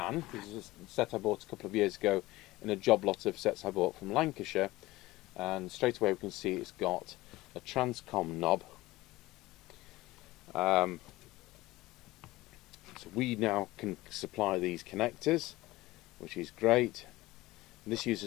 This is a set I bought a couple of years ago in a job lot of sets I bought from Lancashire, and straight away we can see it's got a transcom knob. So we now can supply these connectors, which is great. And this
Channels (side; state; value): right; quieter; 18.8 dB